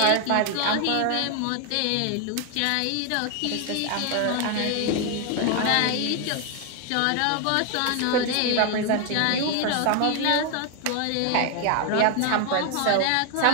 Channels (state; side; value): different; both; correlation 0.00